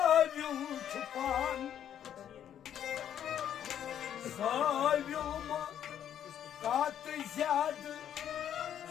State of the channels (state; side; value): quieter; right; 9.9 dB